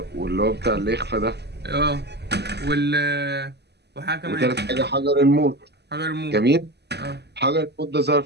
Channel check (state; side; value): late; left; 0.49 ms